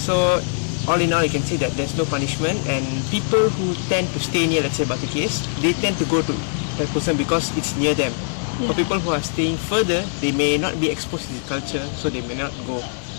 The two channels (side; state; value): right; silent; digital silence